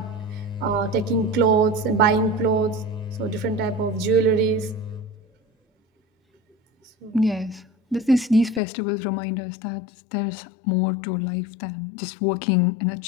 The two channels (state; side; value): drops out; right; at 8.6 s